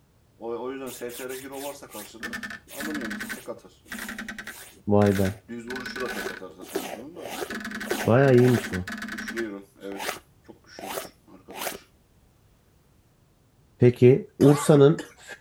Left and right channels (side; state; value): both; identical; correlation 1.00